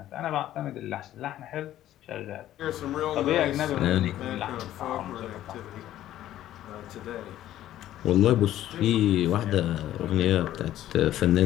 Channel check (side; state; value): right; quieter; 13.0 dB